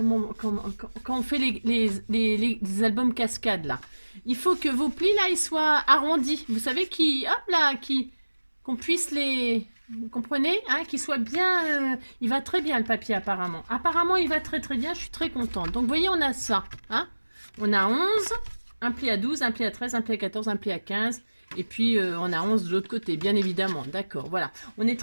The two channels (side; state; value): both; inverted; correlation -1.00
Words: on fait les albums cascades, là. Il faut que vos plis, là, ils soient arrondis. Vous savez, qu'on puisse les... Vous comprenez, hein, qu'il soit bien... il va très bien, le papier, apparemment. Apparemment, il va très bien. Je suis très contente. Donc, vous voyez, on a ça. Hein, on a 11, un pli à 12, un pli à 13, un pli à 14, un pli à 15... Et puis, on a 11 de l'autre côté, bien évidemment. D'accord, voilà. On est